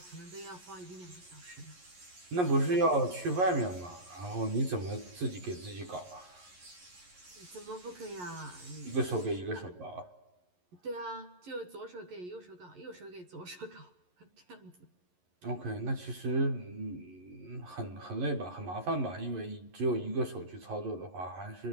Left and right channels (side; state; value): left; late; 11 ms